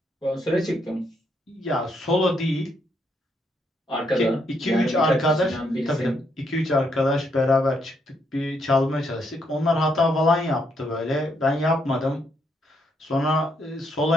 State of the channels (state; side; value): normal; both; correlation 0.76